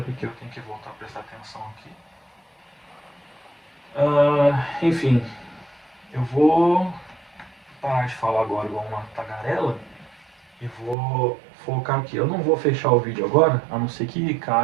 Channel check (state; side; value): drops out; left; at 11.0 s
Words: porque eu tenho que voltar a prestar atenção aqui. Enfim, eu vou parar de falar agora igual uma tagarela e vou focar aqui. Eu não vou fechar o vídeo agora, a não ser que